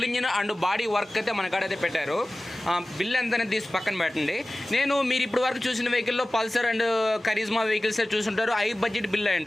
engine and body work అయితే మన కాడైతే పెట్టారు. బిల్ ఎంత అనేది తీసి పక్కన పెట్టండి. మీరు ఇప్పుడు వరకు చూసిన వెహికల్లో పల్సర్ అండ్ కరిజ్మా వెహికల్స్ చూసుంటారు, హై బడ్జెట్ బిల్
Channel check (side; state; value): both; normal; correlation 0.97